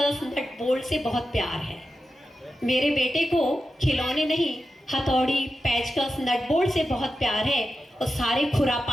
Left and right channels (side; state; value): both; normal; correlation 0.91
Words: नट बोल्ट से बहुत प्यार है। मेरे बेटे को खिलौने नहीं, हथौड़ी, पेचकस, नट बोल्ट से बहुत प्यार है, और सारे